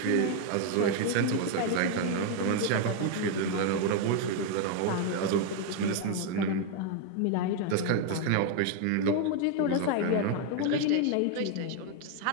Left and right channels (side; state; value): both; different; correlation 0.00